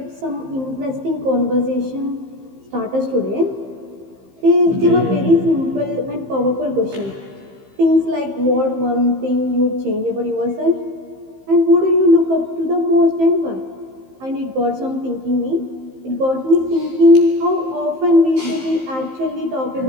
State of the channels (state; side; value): late; left; 15 ms